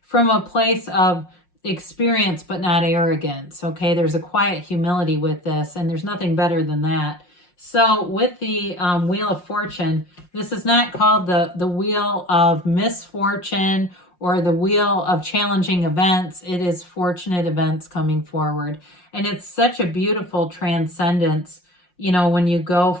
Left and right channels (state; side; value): late; right; 5.6 ms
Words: from a place of experience, but not arrogance. Okay, there's a quiet humility with this, and there's nothing better than that. So with the Wheel of Fortune, this is not called the Wheel of Misfortune or the Wheel of Challenging Events. It is fortunate events coming forward. And it's such a beautiful transcendence, you know, when you go